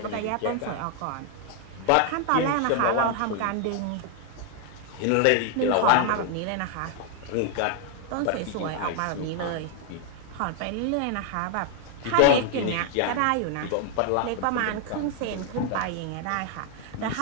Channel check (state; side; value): different; both; correlation 0.00